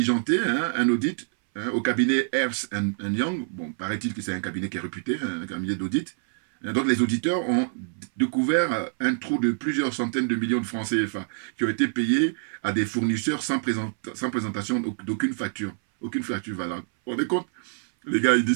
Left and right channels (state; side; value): silent; left; 61 dB below the other